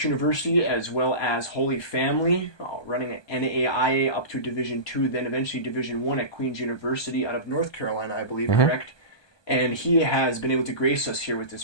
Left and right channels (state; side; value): late; right; 1.2 ms